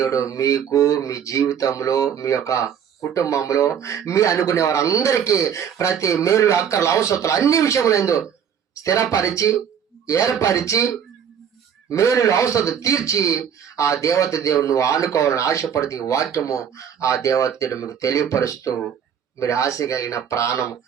మీకు మీ జీవితంలో, మీ యొక్క కుటుంబంలో, మీ అనుకునే వారందరికీ ప్రతి మేలు అక్కర్లు అవసరాలు అన్ని విషయములందు స్థిరపరిచి ఏర్పరిచి మేలు అవసరం తీర్చి ఆ దేవత దేవుడు నువ్వు ఆనుకోవాలని ఆశపడితే వాక్యము ఆ దేవత దేవుడు మీకు తెలియపరుస్తూ, మీరు ఆశ కలిగిన ప్రాణం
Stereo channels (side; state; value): left; quieter; 8.2 dB